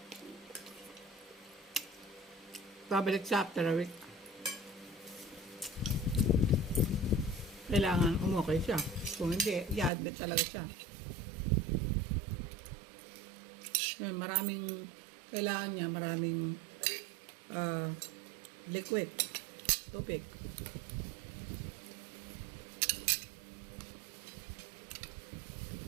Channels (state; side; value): drops out; left; at 9.9 s